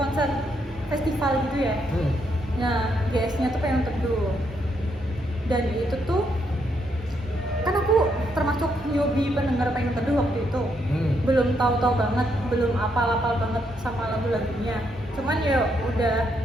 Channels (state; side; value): normal; both; correlation 0.76